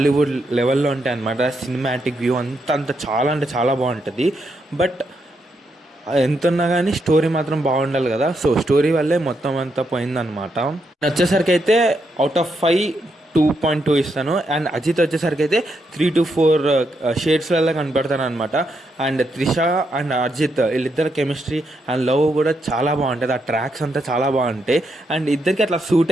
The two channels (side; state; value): both; normal; correlation 0.80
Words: లెవెల్లో ఉంటాయి అనమాట. సినిమాటిక్ వ్యూ అంత చాలా అంటే చాలా బాగుంటుంది. బట్ ఎంత ఉన్నా కానీ స్టోరీ మాత్రం బాగుండాలి కదా. సో స్టోరీ వల్లే మొత్తం అంతా పోయిందనమాట. వచ్చేసరికి అయితే అవుట్ ఆఫ్ 5 2.2 ఇస్తాను. అండ్ అజిత్ వచ్చేసరికి అయితే 3 to 4 షేడ్స్లలో కనపడతాను అనమాట. అండ్ త్రిష అండ్ అజిత్ వీళ్ళిద్దరు కెమిస్ట్రీ అండ్ లవ్ కూడా చాలా బాగుంటుంది. ఆ ట్రాక్స్ అంతా చాలా బాగుంటాయి. అండ్ ఇద్దరికి అట్లా